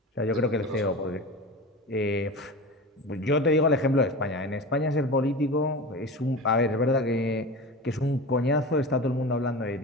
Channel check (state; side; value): normal; both; correlation 0.30